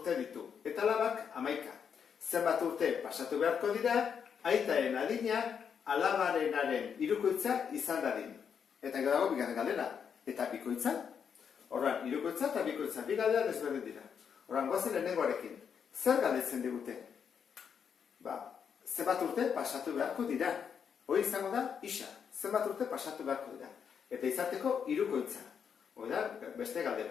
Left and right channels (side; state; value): right; quieter; 7.2 dB